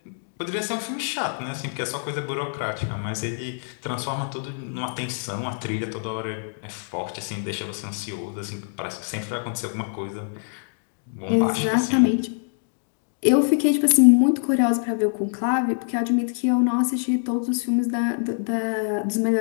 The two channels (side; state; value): right; silent; digital silence